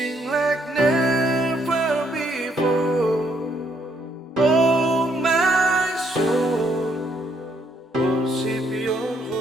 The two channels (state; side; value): normal; both; correlation 0.71